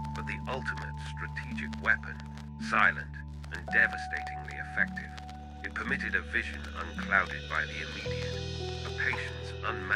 but the ultimate strategic weapon, silent and devastatingly effective. It permitted a vision unclouded by the immediate, a patience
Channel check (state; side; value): identical; both; correlation 1.00